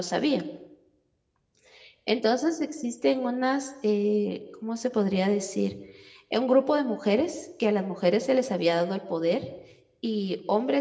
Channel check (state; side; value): identical; both; correlation 1.00